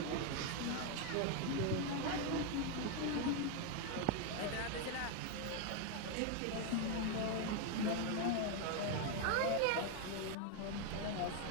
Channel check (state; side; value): different; both; correlation 0.01